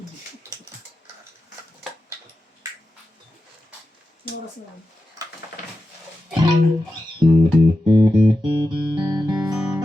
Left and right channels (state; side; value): normal; both; correlation 0.91